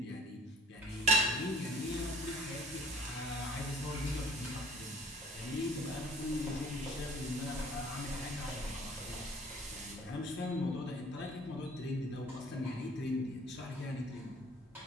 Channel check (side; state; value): both; normal; correlation 0.52